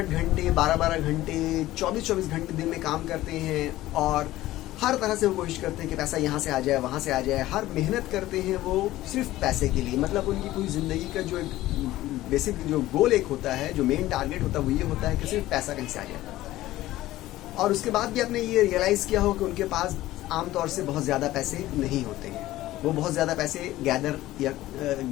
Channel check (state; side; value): quieter; right; 15.9 dB